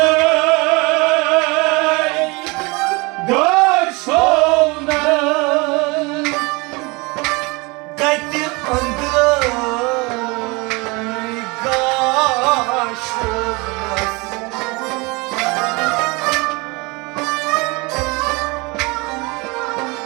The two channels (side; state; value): left; quieter; 26.6 dB